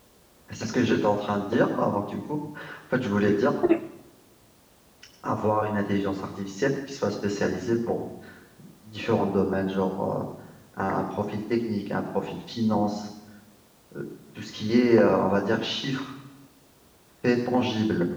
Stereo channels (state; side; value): identical; both; correlation 1.00